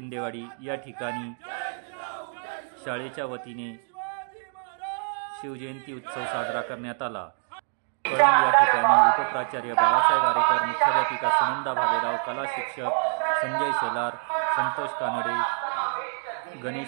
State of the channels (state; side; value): silent; left; 61 dB below the other